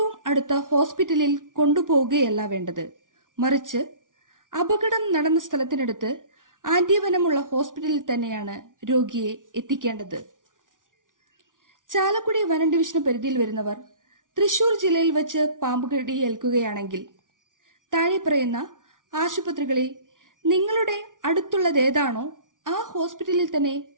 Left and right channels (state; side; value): late; left; 0.88 ms